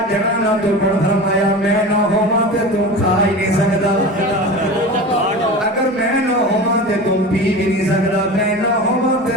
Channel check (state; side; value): normal; both; correlation 0.31